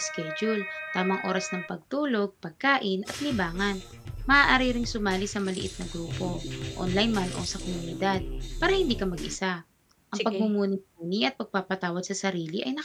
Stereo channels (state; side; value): identical; both; correlation 1.00